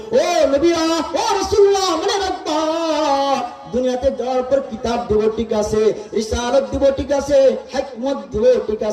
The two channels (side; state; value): both; identical; correlation 1.00